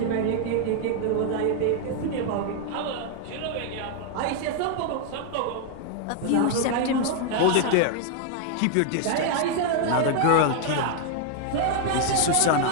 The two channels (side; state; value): both; different; correlation 0.00